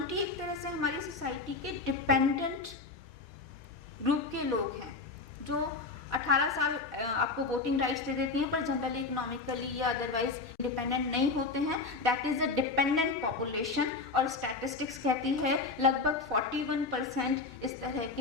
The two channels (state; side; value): quieter; right; 3.9 dB